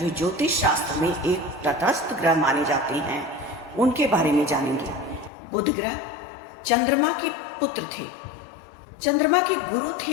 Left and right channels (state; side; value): drops out; right; at 5.3 s